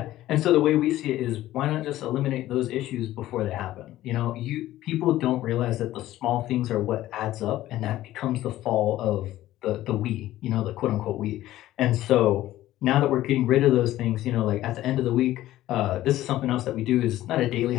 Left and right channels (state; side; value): quieter; right; 14.8 dB